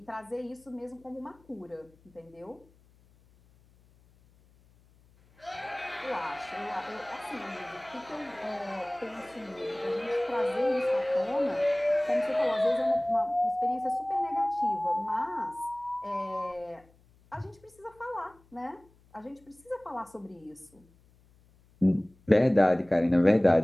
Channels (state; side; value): noise; left; hum, 30 dB below the sound